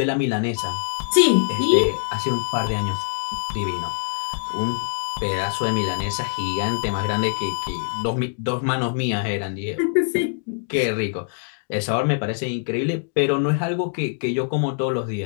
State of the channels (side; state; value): right; silent; digital silence